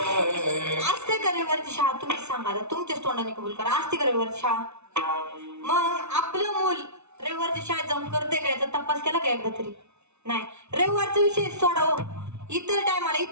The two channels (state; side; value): late; left; 0.81 ms